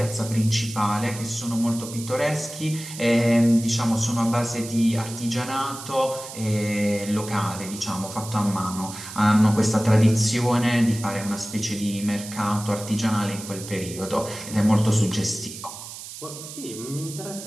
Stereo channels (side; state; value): right; noise; hiss, 12 dB below the sound